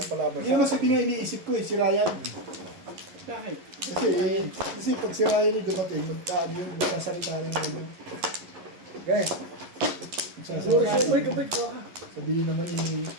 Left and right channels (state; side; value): late; left; 11 ms